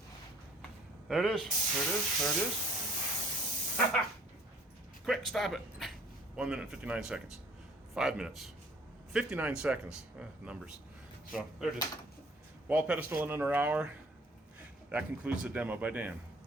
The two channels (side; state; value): both; normal; correlation 0.55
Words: There it is, there it is, there it is. Quick, stop it. 1 minute and 59 seconds. 5 minutes. 59 seconds. Numbers. So, there it is. Wall pedestal in under an hour. That concludes the demo by Dan.